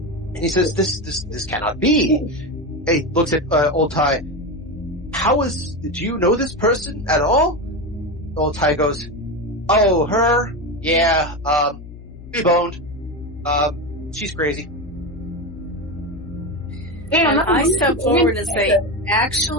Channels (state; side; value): noise; left; hum, 16 dB below the sound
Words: he says, this cannot be. He looks at old Ty. Do you know this person at all? Old Ty goes, oh, her? Yeah, we boned. She's crazy. And I step forward and say,